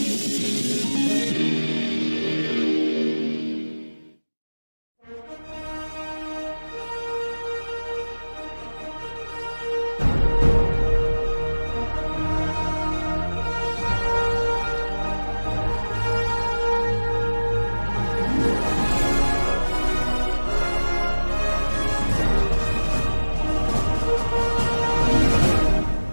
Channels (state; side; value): inverted; both; correlation -1.00